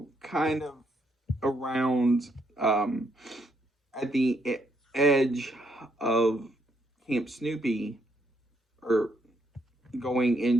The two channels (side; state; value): both; normal; correlation 0.74